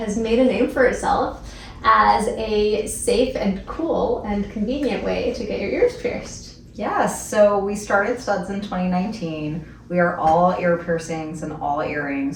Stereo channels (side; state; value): both; identical; correlation 1.00